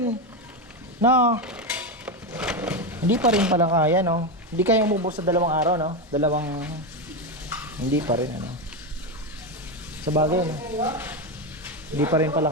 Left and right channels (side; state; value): both; normal; correlation 0.12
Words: no? Hindi pa rin pala kaya, no? Hindi kaya umubos sa 2 araw, no? Hindi pa rin, sa bagay, no? Hindi pa rin pala